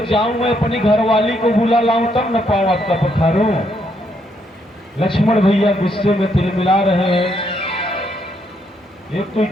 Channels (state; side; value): normal; both; correlation 0.74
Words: जाऊं मैं अपनी घरवाली को बुला लाऊं तब न पाऊं आपका पखारूं। लक्ष्मण भैया गुस्से में तिलमिला रहे हैं। एक तो